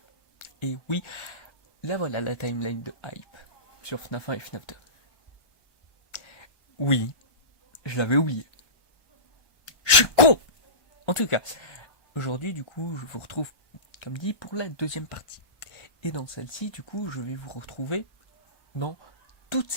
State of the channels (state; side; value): late; right; 1.2 ms